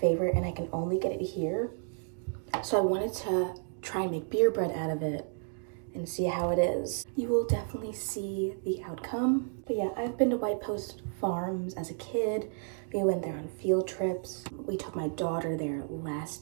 and I can only get it here. So I wanted to try and make beer bread out of it and see how it is. You will definitely see the outcome. But yeah, I've been to White Post Farms as a kid. We went there on field trips. We took my daughter there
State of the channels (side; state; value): left; silent; 55 dB below the other